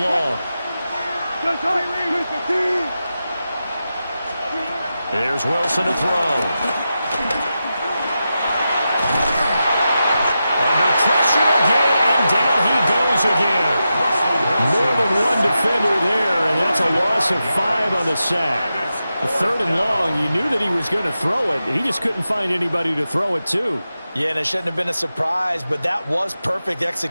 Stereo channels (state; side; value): inverted; both; correlation -0.90